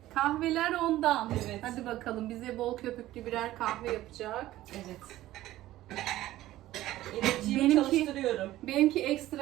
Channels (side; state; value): left; quieter; 15.2 dB